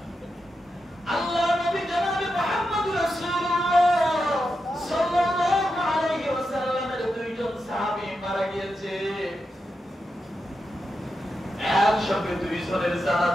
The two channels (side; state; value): both; normal; correlation 0.87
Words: আল্লাহ নবী জনাবে মুহাম্মদ রাসূলুল্লাহ সাল্লাল্লাহু আলাইহি ওয়াসাল্লামের দুইজন সাহাবী মারা গিয়েছে, একসাথে দুইজনের